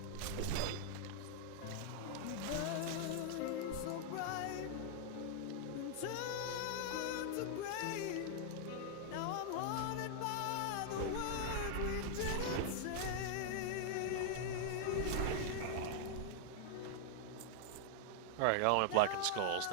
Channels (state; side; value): different; both; correlation -0.01